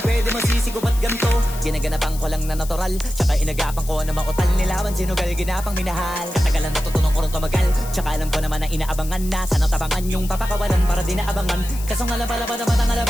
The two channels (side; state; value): left; noise; hiss, 14 dB below the sound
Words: di masisigo ba't ganto? Ginaganapan ko lang na natural, tsaka inagapan ko na mautal. Nilawan sinugal, ginapang minahal. Katagalan natutunan ko rin tumagal, tsaka alam ko naman na inaabangan na. Sanang tabangan yung papakawalan para di naabangan. Kaso nga